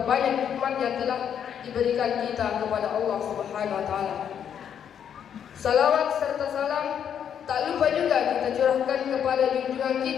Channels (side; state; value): right; quieter; 8.6 dB